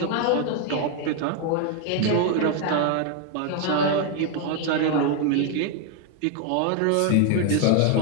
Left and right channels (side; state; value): both; different; correlation 0.01